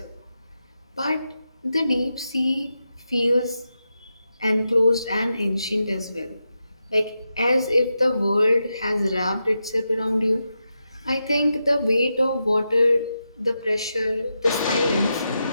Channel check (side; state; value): both; inverted; correlation -0.87